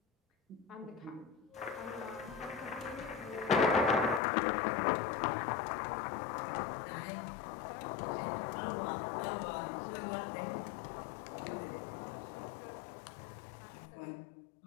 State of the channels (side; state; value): right; drops out; at 4.2 s